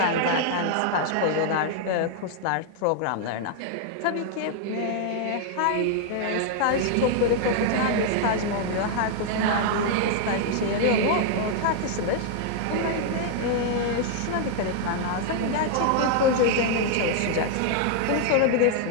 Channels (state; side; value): different; both; correlation 0.00